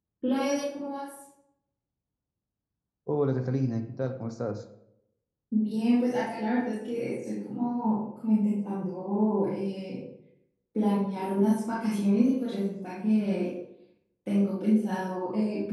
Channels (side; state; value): both; identical; correlation 1.00